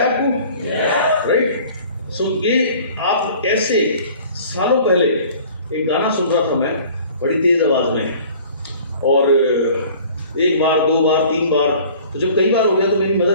आपको? राइट। सो ये आप ऐसे सालों पहले एक गाना सुन रहा था मैं बड़ी तेज आवाज में, और एक बार, दो बार, 3 बार, तो जब कई बार हो गया तो मेरी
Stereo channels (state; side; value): inverted; both; correlation -0.49